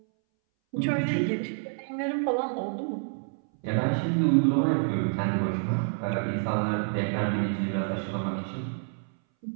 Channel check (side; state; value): left; silent; 59 dB below the other